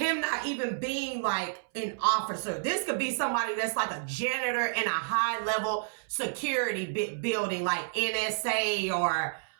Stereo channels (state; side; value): silent; left; 58 dB below the other